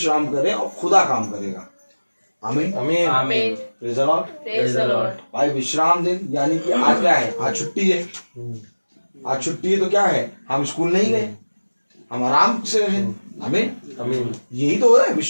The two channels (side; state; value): both; inverted; correlation -1.00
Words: करें और खुदा काम करेगा। आमीन आमीन आमीन। Praise the Lord. भाई विश्राम दिन यानी कि आज क्या है? आज छुट्टी है। आज छुट्टी है तो क्या है? हम स्कूल नहीं गए, हम आराम से रहे। आमीन आमीन। यही तो है